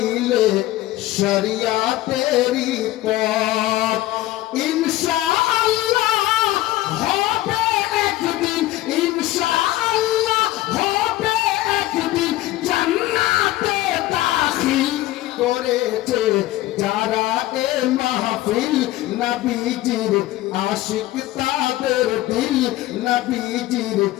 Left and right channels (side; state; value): right; quieter; 16.5 dB